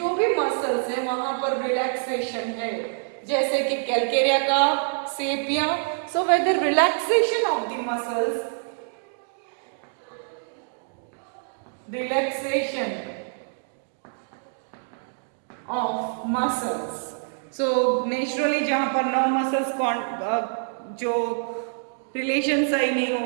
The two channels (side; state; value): left; silent; digital silence